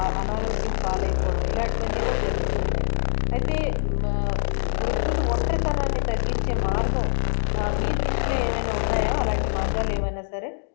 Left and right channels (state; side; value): silent; right; digital silence